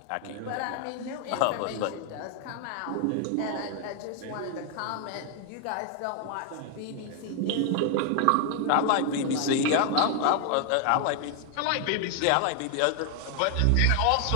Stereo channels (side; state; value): both; different; correlation 0.00